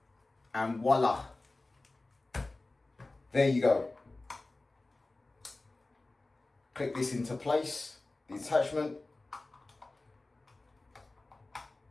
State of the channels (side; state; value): right; quieter; 3.1 dB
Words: and voila. There you go. Click this into place, the attachment.